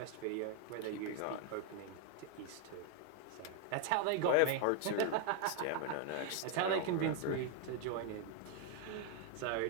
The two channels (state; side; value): different; both; correlation 0.01